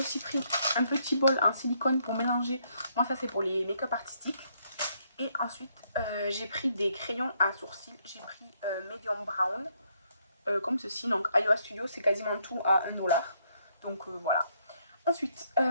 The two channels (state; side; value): inverted; both; correlation -0.72